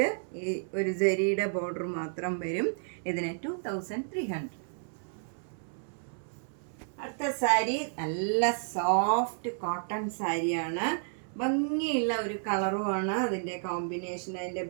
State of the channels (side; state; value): left; silent; 57 dB below the other